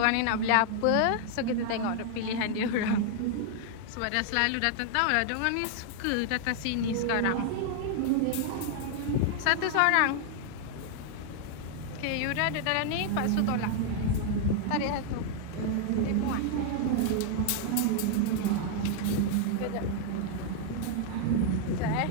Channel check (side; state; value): both; different; correlation 0.00